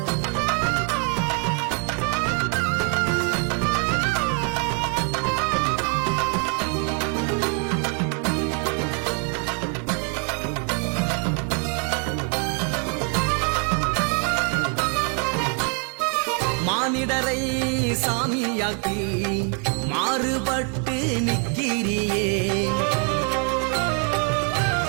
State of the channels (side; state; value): left; quieter; 39.9 dB